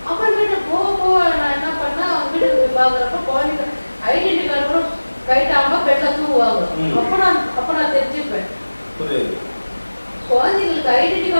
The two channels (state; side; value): inverted; both; correlation -1.00